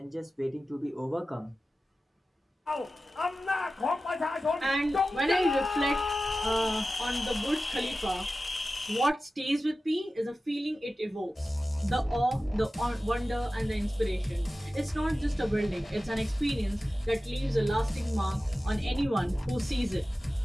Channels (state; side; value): normal; both; correlation 0.95